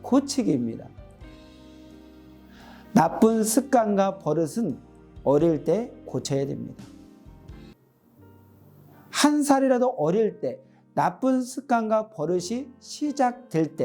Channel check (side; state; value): both; identical; correlation 1.00